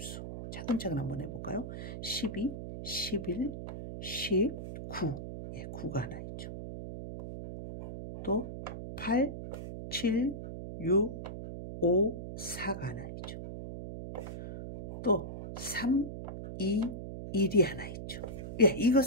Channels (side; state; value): right; noise; hum, 8 dB below the sound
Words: 차근차근 한번 해볼까요? 12, 11, 10, 9. 예, 9가 하나 있죠. 또 8, 7, 6, 5, 4가 하나 있죠. 또 3, 2, 1이 하나 있죠. 예, 이거